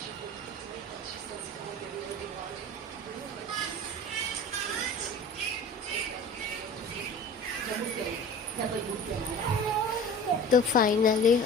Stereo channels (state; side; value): normal; both; correlation 0.39